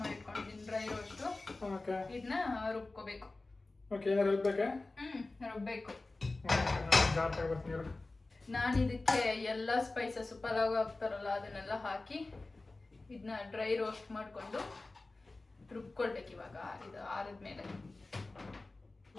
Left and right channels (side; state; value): right; quieter; 3.2 dB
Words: ಮಾಡಿ ಇಟ್ಕೊಂಡಿದ್ದೀನಿ, ಡ್ರೈ ರೋಸ್ಟ್. ಓಕೆ, ಇದನ್ನ ರುಬ್ಕೋಬೇಕು. ಓಕೆ, ಏನಾರು ರುಬ್ಬೇಕಾ? ರುಬ್ಬೇಕು. ಜಾರ್ ತಗೊಬರ್ತೀನಿ. ನಾನು ಇದಕ್ಕೆ ಎಲ್ಲ ಸ್ಪೈಸಸ್ ಪಲಾವ್ ಹಾಕ್ತಾರಲ್ಲ ಅದನ್ನೆಲ್ಲ ಹಾಕಿ ಇದನ್ನ ಡ್ರೈ ರೋಸ್ಟ್ ಮಾಡಿಕೊಂಡು ರುಬ್ಕೊಳ್ಬೇಕು. ಇವಾಗ ಇದು ಆರಿದ್ಮೇಲೆ